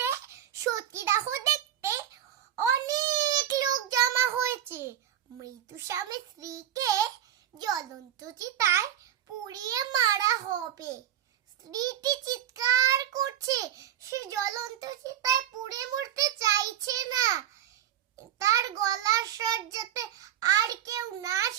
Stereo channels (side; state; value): left; quieter; 10.8 dB